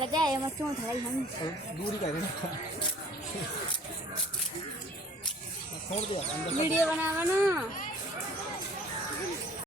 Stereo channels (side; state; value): both; normal; correlation 0.53